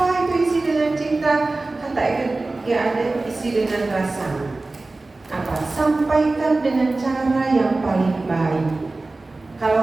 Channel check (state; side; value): quieter; left; 3.2 dB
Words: itu isi dengan cinta? Kata ya ada isi dengan rasa. Apa? Sampaikan dengan cara yang paling baik.